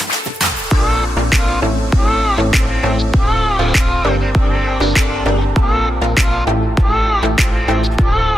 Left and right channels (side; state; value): both; normal; correlation 0.89